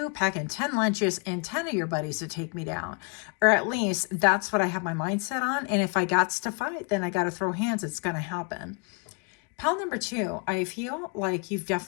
packing 10 lunches and 10 of your buddies to take me down. Or at least that's what I have my mindset on. And if I got to fight, then I got to throw hands. It's going to happen. Pile number 2, I feel like you've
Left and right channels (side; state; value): right; quieter; 34.6 dB